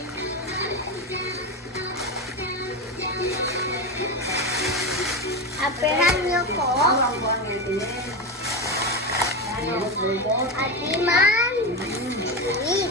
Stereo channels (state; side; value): normal; both; correlation 0.17